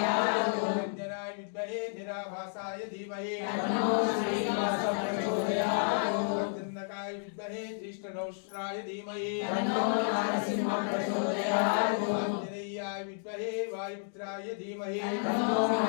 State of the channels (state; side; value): silent; right; digital silence